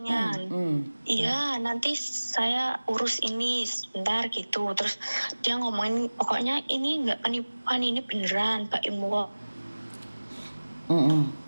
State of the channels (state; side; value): inverted; both; correlation -1.00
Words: Iya, nanti saya urus ini sebentar gitu. Terus dia ngomongin, pokoknya ini nggak penipuan, ini beneran Mbak Imwo.